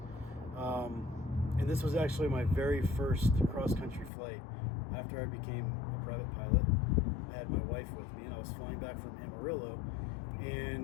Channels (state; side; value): drops out; right; at 4.1 s